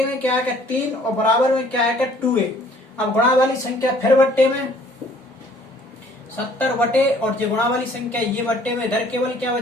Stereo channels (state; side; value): normal; both; correlation 0.57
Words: में क्या आएगा 3, और बराबर में क्या आएगा 2a। अब गुणा वाली संख्या फिर बट्टे में 70 बटे, और जो गुणा वाली संख्या ये बट्टे में, इधर केवल क्या